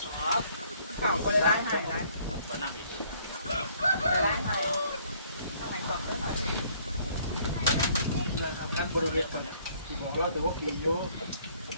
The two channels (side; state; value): both; inverted; correlation -0.62